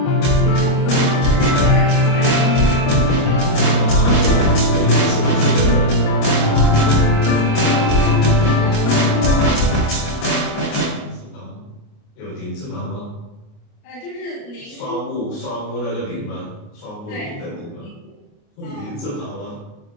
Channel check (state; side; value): late; right; 28 ms